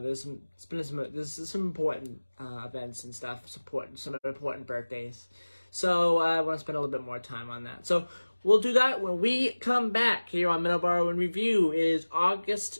some important events and stuff, some important birthdays. So I want to spend a little bit more time on that. So we'll do that when we come back here on Middleboro in Review. It is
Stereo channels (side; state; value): both; inverted; correlation -1.00